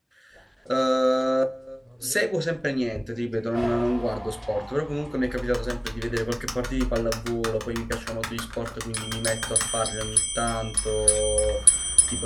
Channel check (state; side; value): identical; both; correlation 1.00